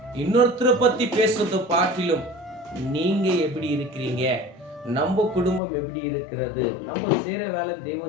இன்னொருத்தரை பத்தி பேசுறதை பாட்டிலும் நீங்க எப்படி இருக்கிறீங்க, நம்ம குடும்பம் எப்படி இருக்கிறது, நம்ம செய்யற வேலை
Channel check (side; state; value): right; drops out; at 5.6 s